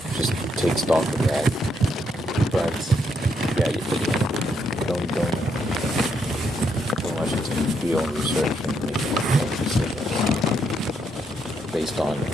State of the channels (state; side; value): normal; both; correlation 0.76